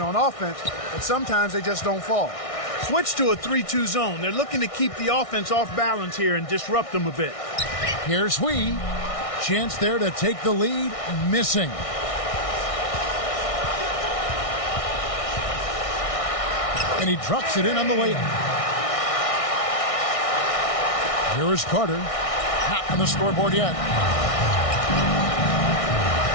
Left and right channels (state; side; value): late; right; 1.6 ms